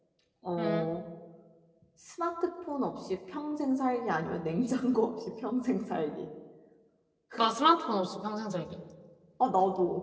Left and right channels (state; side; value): identical; both; correlation 1.00